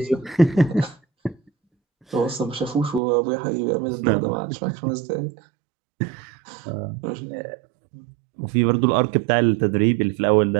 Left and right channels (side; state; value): left; drops out; at 3.0 s